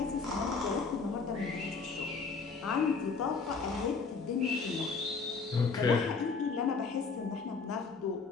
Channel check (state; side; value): quieter; right; 4.8 dB